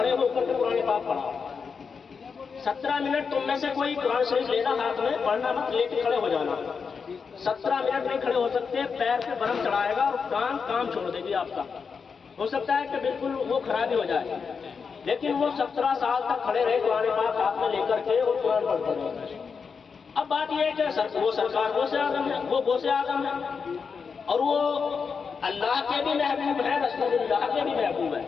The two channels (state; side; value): quieter; right; 5.7 dB